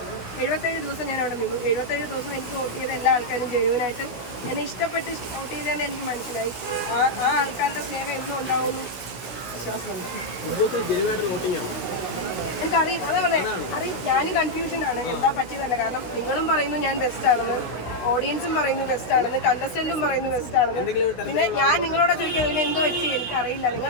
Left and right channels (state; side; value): late; right; 16 ms